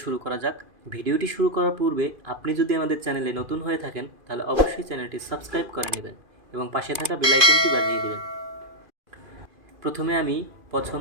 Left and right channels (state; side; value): late; left; 2.5 ms